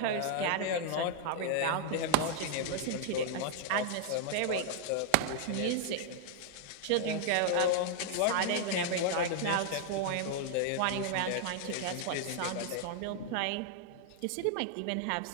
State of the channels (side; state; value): both; different; correlation 0.00